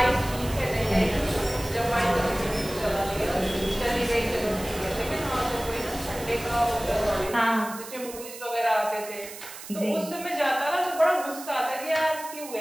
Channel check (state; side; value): noise; right; hiss, 13 dB below the sound